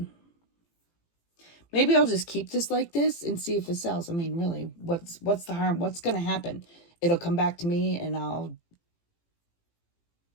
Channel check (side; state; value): right; late; 18 ms